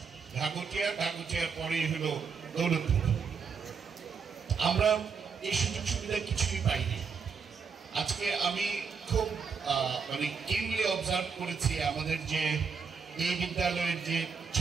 ঘাগুটিয়ার পরেই হলো দৌলতপুর। আমরা এই সুযোগ সুবিধা কিছুই পাইনি। আজকে আমি খুব মানে কিনলি অবজার্ভ করেছি আমাদের যে এই বিদ্যালয়ের যে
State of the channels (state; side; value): quieter; left; 5.8 dB